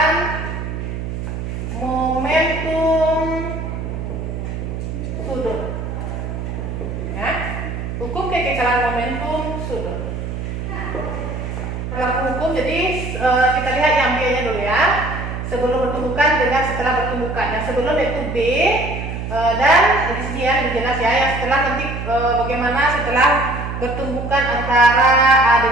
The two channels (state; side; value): noise; right; hum, 5 dB below the sound